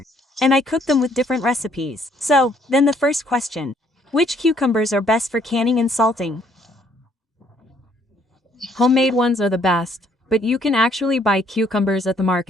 And I cook them with different recipes. So, then the first question. Which cucumbers are best for canning and salting? Homemade ones are the best, but you can actually buy cucumbers at the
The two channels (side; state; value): both; normal; correlation 0.66